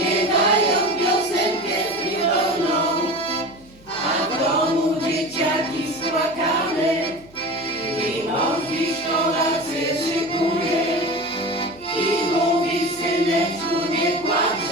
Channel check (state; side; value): noise; right; hum, 26 dB below the sound